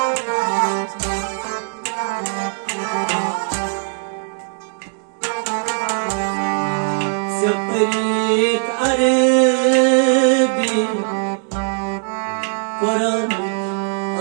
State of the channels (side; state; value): left; silent; digital silence